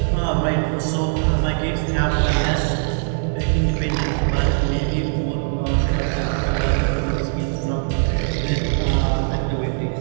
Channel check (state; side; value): silent; left; 65 dB below the other